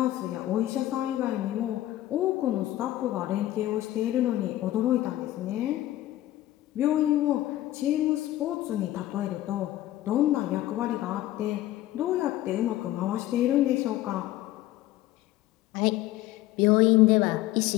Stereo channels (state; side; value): quieter; right; 14.9 dB